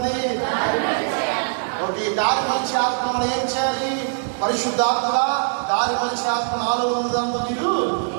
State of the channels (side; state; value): left; silent; digital silence